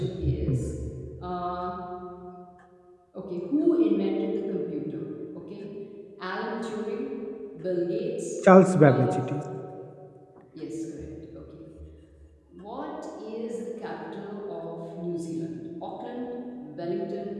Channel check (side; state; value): both; identical; correlation 1.00